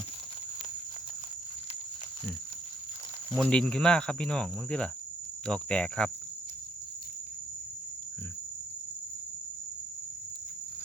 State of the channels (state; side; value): normal; both; correlation 0.69